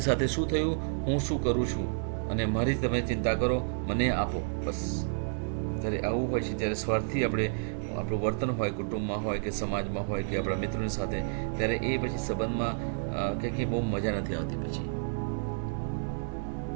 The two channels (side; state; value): left; silent; 58 dB below the other